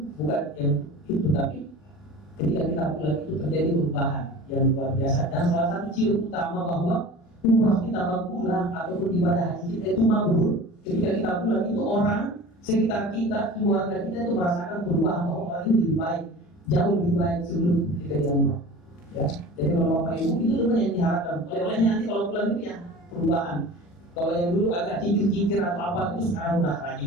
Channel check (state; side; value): late; right; 40 ms